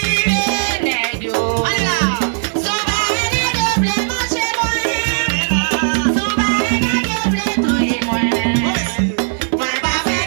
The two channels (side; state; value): left; silent; digital silence